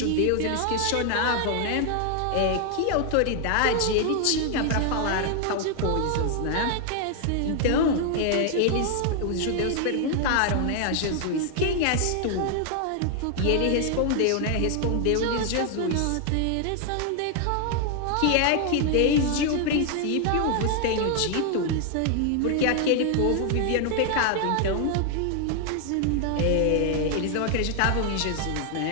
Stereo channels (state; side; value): different; both; correlation 0.00